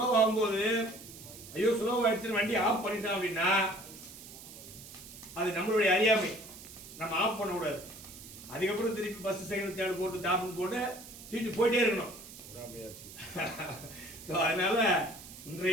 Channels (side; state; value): right; noise; hiss, 15 dB below the sound